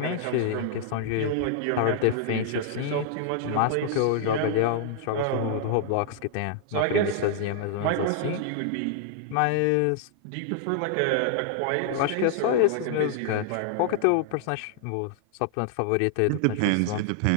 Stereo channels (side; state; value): both; different; correlation -0.01